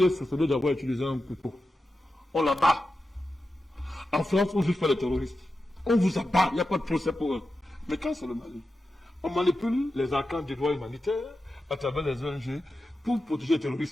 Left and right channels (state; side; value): normal; both; correlation 0.91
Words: est soupçonné d'avoir utilisé un couteau. On l'abat. En France, on ne juge pas les terroristes. On vous abat, il n'y a pas de procès pour eux. Mais quand c'est le Mali, on manipule les arcanes du droit humanitaire à travers les ONG pour protéger les